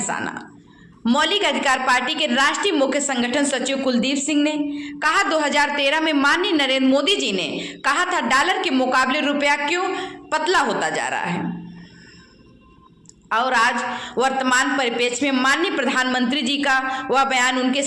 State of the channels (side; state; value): both; identical; correlation 1.00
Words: मौलिक अधिकार पार्टी के राष्ट्रीय मुख्य संगठन सचिव कुलदीप सिंह ने कहा, 2013 में माननीय नरेंद्र मोदी जी ने कहा था डॉलर के मुकाबले रुपया क्यों पतला होता जा रहा है, और आज वर्तमान परिप्रेक्ष्य में माननीय प्रधानमंत्री जी का वह बयान उनके